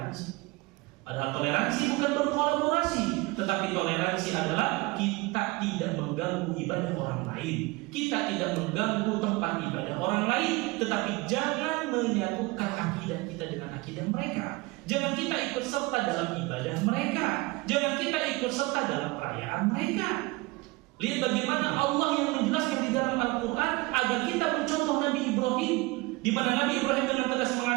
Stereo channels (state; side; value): quieter; left; 23.2 dB